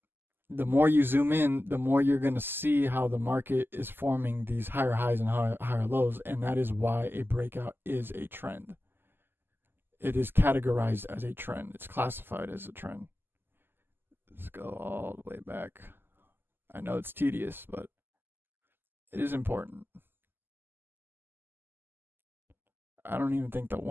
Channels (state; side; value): late; left; 0.10 ms